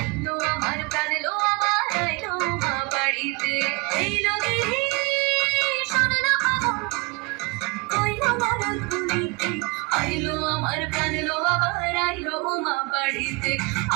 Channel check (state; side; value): quieter; left; 27.2 dB